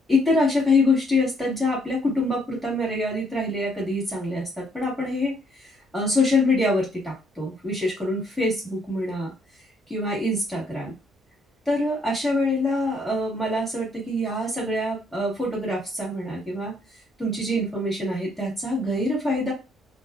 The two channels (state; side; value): normal; both; correlation 0.69